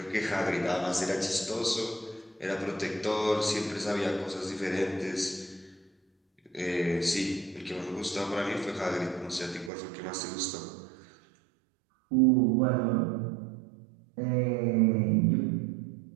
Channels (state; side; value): drops out; left; at 9.7 s